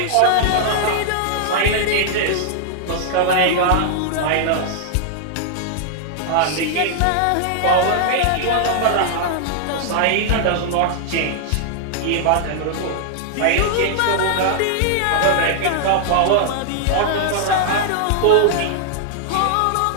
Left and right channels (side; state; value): both; different; correlation -0.01